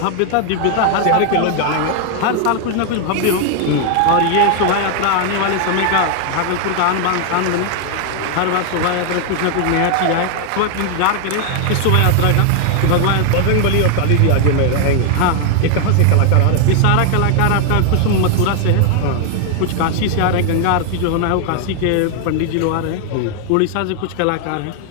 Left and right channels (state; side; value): different; both; correlation 0.00